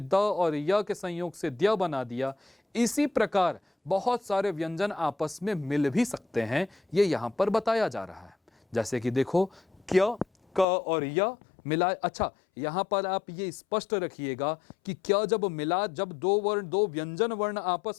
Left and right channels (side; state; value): right; drops out; at 10.7 s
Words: और य के संयोग से द्य बना दिया, इसी प्रकार बहुत सारे व्यंजन आपस में मिल भी सकते हैं, ये यहाँ पर बताया जा रहा है। जैसे कि देखो, क्य, क और य मिला। अच्छा, यहाँ पर आप ये स्पष्ट रखिएगा कि क्या जब मिला, जब दो वर्ण, दो व्यंजन वर्ण